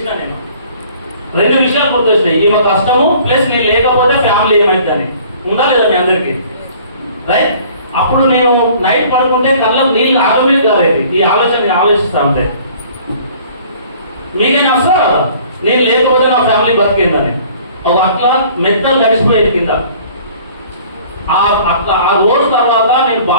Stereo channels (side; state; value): both; inverted; correlation -0.52